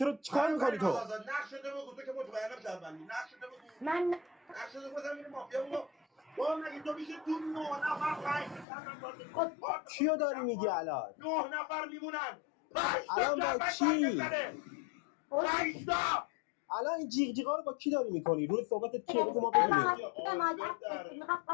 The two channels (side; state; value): right; drops out; at 8.7 s